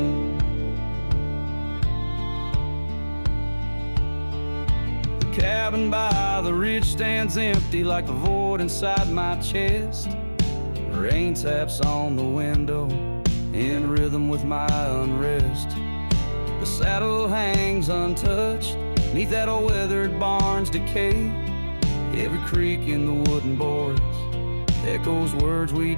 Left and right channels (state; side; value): inverted; both; correlation -1.00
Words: The cabin by the ridge stands empty like the void inside my chest. Rain taps on the window in rhythm with my unrest. The saddle hangs untouched neath that old weathered barn's decay. Every creak in the wooden boards echoes words we